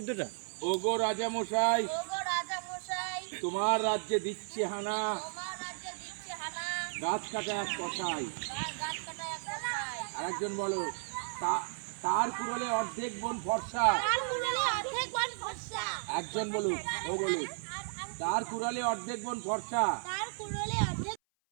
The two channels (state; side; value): silent; left; 55 dB below the other